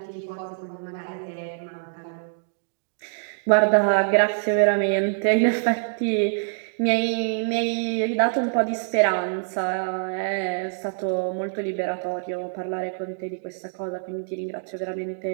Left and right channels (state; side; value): silent; left; digital silence